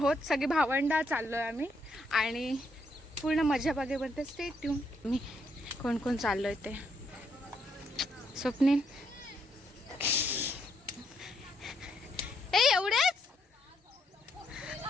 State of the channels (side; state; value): both; normal; correlation 0.75